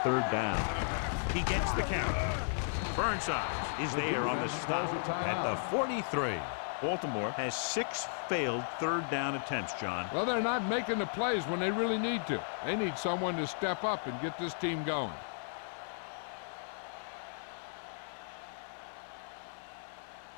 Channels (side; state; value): right; silent; 54 dB below the other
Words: down. He gets the count. Burnside is there on the stop at the 43. Baltimore has 6 failed 3rd down attempts, John. Well, they're not making the plays when they really need to. They need someone to step up and get this team going.